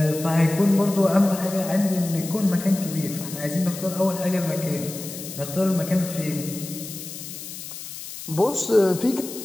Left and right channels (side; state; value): left; noise; hiss, 11 dB below the sound